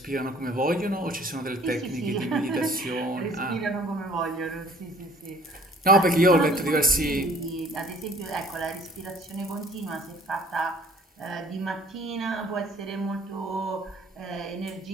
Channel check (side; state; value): both; normal; correlation 0.53